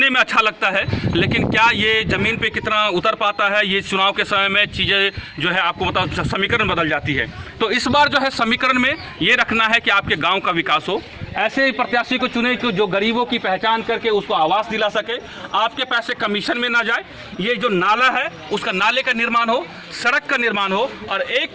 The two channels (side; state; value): both; identical; correlation 1.00